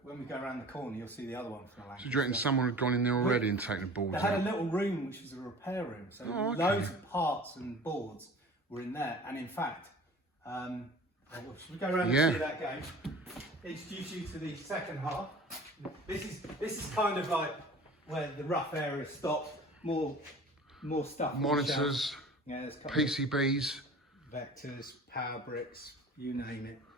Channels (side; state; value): both; normal; correlation 0.43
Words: when we go around the corner, you'll see the other one from the Lancaster. So do you reckon someone had gone in there already and taken the boards They had a out? little room which was a repair room, so Oh, okay. loads of parts and boards were in there. And in fact, Should we go around and see that game? Introduce you to the second half. This is kind of like where the rough area stops. More stuff. Monitors, PCBs, vectors, power bricks, you name it.